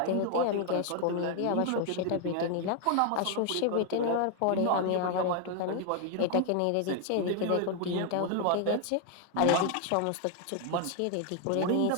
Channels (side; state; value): both; different; correlation 0.00